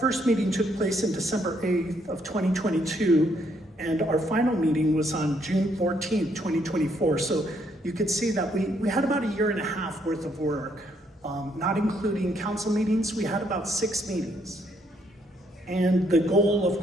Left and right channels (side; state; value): both; normal; correlation 0.71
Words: meeting took place in December 8th of 2022, and our final meeting was on June 14th, 2024. So you could see that we had about a year and a half worth of work. Not including council meetings, we had about 6 meetings. And the goal, of